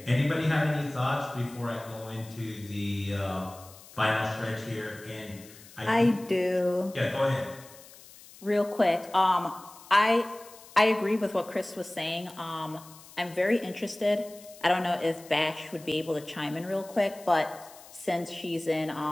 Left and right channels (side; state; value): left; noise; hiss, 20 dB below the sound